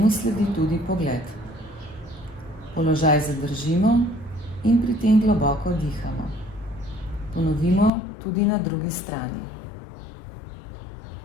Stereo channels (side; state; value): right; drops out; at 7.9 s